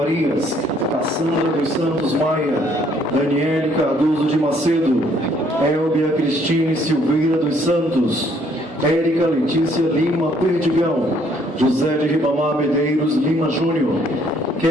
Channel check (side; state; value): both; normal; correlation 0.65